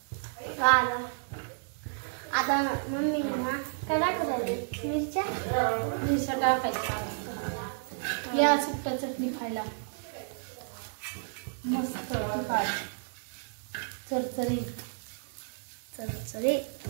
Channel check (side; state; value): left; silent; digital silence